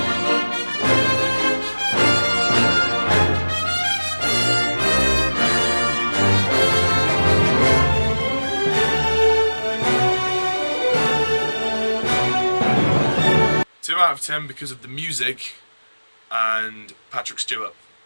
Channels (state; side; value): inverted; both; correlation -1.00